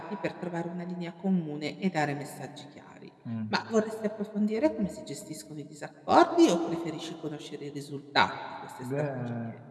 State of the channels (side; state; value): both; identical; correlation 1.00